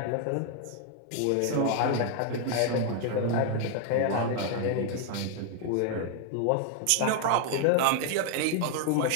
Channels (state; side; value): different; both; correlation 0.00